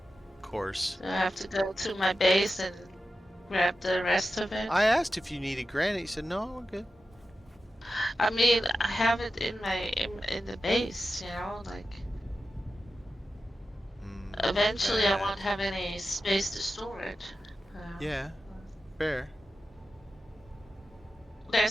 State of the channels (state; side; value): normal; both; correlation 0.92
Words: Of course. I have to go to my base and grab the rest of it. I asked if you needed granite. You said, no, we're good. I mean, I have it in my in the base, you know, like eventually I bad. won't have any space to store it. Yeah, fair.